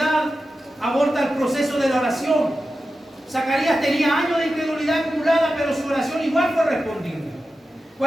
aborta el proceso de la oración. Zacarías tenía años de incredulidad acumulada, pero su oración igual fue respondida.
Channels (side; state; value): both; normal; correlation 0.92